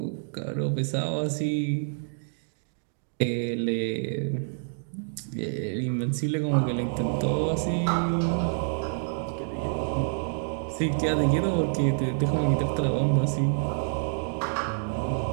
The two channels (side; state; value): left; silent; digital silence